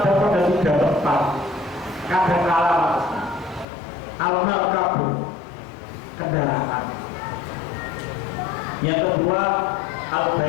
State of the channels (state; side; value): drops out; right; at 3.7 s